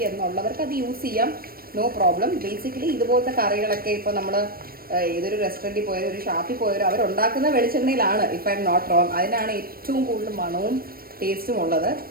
എന്നുള്ളവർക്ക് അത് യൂസ് ചെയ്യാം. No problem. ബേസിക്കലി ഇതുപോലത്തെ കറികളൊക്കെ ഇപ്പോൾ നമ്മൾ ഏതൊരു റെസ്റ്റോറൻറ്റിൽ പോയാലും ഒരു ഷാപ്പിൽ പോയാലും അവരുണ്ടാക്കുന്ന വെളിച്ചെണ്ണയിലാണ്, if I'm not wrong. അതിനാണ് ഏറ്റവും കൂടുതൽ മണവും ടേസ്റ്റും ഉള്ളത്.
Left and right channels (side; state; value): left; late; 0.43 ms